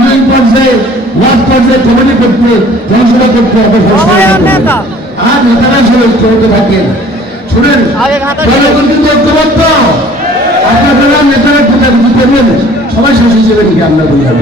পর্যায়ে, ওয়ার্ড পর্যায়ে কমিটি করতে, জনসভা করতে হবে। আর নেতারা সবাই ঐক্যবদ্ধ থাকেন। শুনেন, কিন্তু ঐক্যবদ্ধ আপনারা নেতারা কোথায় বুঝতে পারবেন, সবাই শেষ হিসেবে লিখে আমরা বললাম,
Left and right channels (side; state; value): both; normal; correlation 0.51